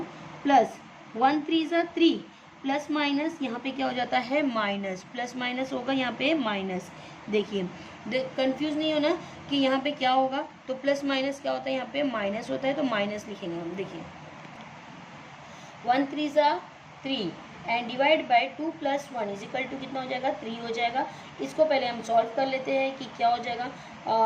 प्लस 1 × 3 = 3 प्लस माइनस यहाँ पे क्या हो जाता है माइनस, प्लस माइनस होगा यहाँ पे माइनस। देखिए कंफ्यूज नहीं होना कि यहाँ पे क्या होगा, तो प्लस माइनस क्या होता है यहाँ पे माइनस होता है, तो माइनस लिखेंगे हम। देखिए 1 × 3 = 3 एंड डिवाइड बाय 2 + 1 = कितना हो जाएगा 3 हो जाएगा। इसको पहले हम सॉल्व कर लेते हैं कि क्या हो जाएगा।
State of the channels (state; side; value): identical; both; correlation 1.00